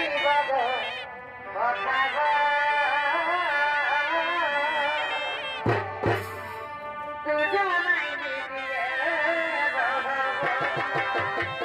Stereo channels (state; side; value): identical; both; correlation 1.00